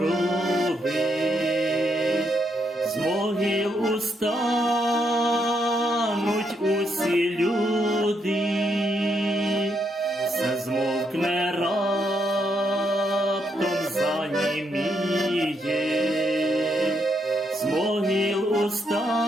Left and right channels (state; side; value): normal; both; correlation 0.77